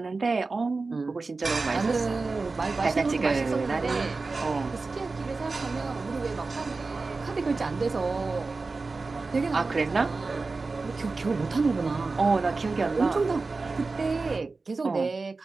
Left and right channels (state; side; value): quieter; left; 3.9 dB